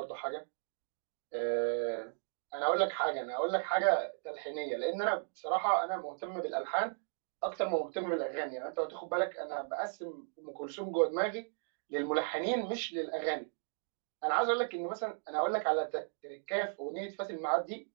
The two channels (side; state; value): left; silent; digital silence